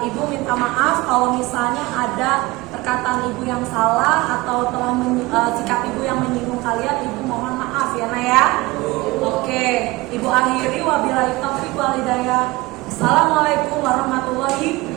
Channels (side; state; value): left; quieter; 21.2 dB